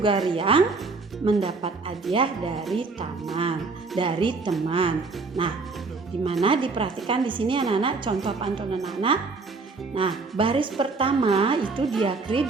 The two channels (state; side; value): quieter; left; 4.1 dB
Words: riang, mendapat hadiah dari teman. Nah, gimana diperhatikan di sini anak-anak contoh pantun anak-anak? Nah, baris pertama itu